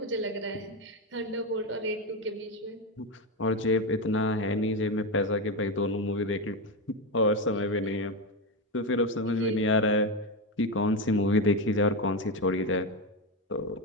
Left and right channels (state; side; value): normal; both; correlation 0.12